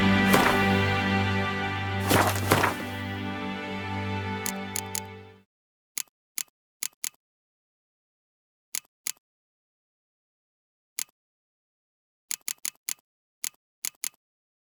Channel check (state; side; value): identical; both; correlation 1.00